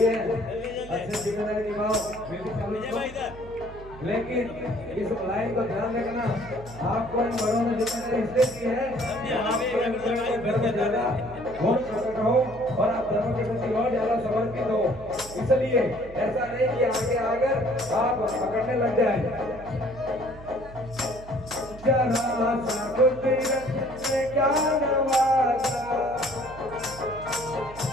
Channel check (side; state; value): right; noise; hum, 16 dB below the sound